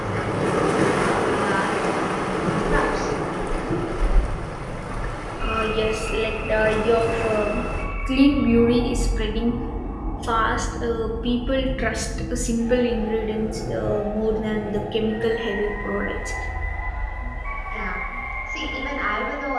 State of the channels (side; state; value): both; identical; correlation 1.00